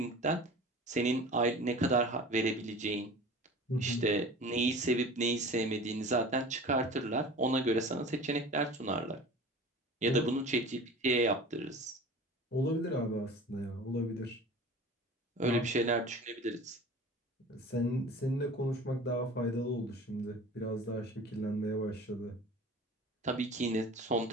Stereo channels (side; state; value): both; normal; correlation 0.39